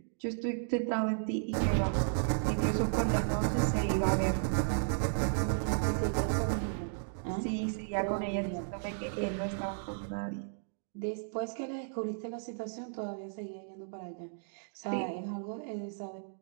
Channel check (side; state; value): left; silent; digital silence